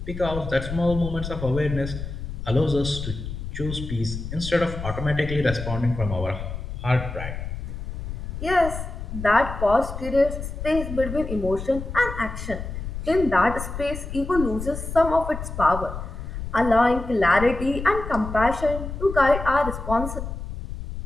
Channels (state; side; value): noise; left; rumble, 7 dB below the sound